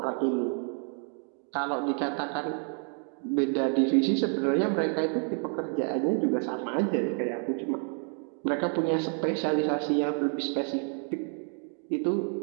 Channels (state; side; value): quieter; left; 38.7 dB